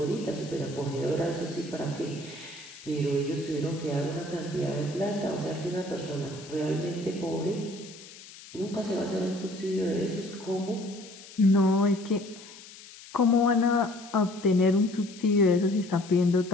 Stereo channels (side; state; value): left; noise; hiss, 18 dB below the sound